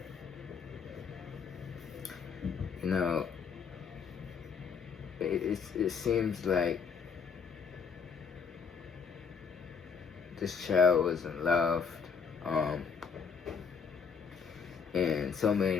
you know, it seems like this child wasn't loved. And so many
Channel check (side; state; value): right; quieter; 6.0 dB